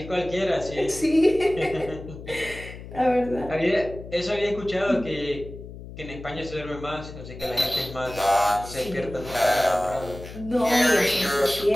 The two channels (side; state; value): left; noise; hum, 13 dB below the sound